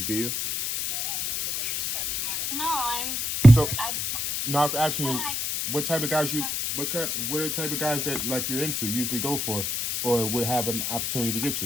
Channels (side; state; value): left; noise; hiss, 1 dB below the sound